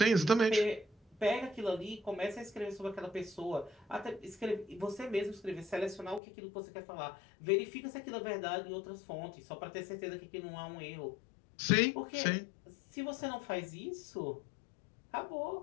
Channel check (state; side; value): drops out; right; at 6.2 s